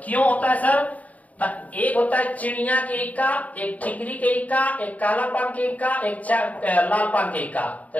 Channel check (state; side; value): late; right; 0.071 ms